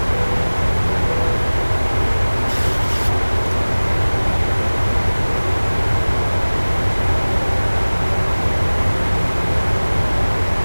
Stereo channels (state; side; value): inverted; both; correlation -1.00